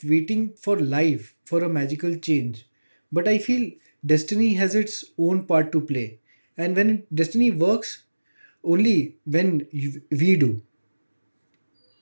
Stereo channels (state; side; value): inverted; both; correlation -1.00